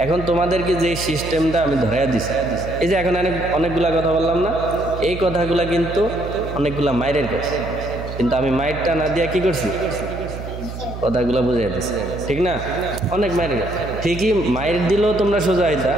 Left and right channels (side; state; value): right; noise; hum, 9 dB below the sound